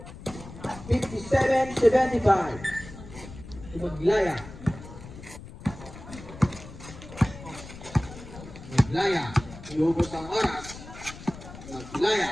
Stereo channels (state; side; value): noise; left; rumble, 15 dB below the sound